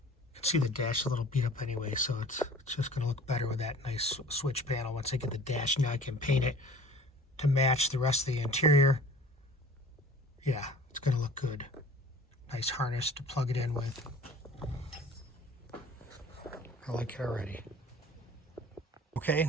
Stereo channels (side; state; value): both; normal; correlation 0.46